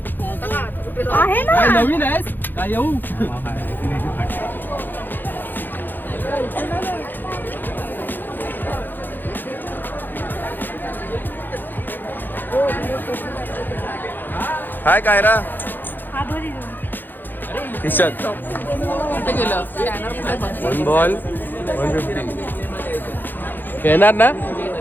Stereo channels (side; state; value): right; late; 0.090 ms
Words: आहे ना, नवीन आहेस काय येऊ. हाय कायरा. खिशात 1 बॉल 150. खेळणार ना.